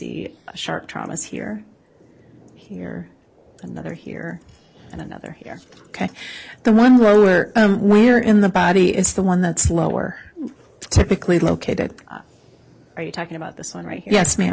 sharp traumas here, here, another here, and another here. Okay. The one lower, where in the body is the one that's lower, typically located? Are you talking about this one right here? Yes,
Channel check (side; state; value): both; identical; correlation 1.00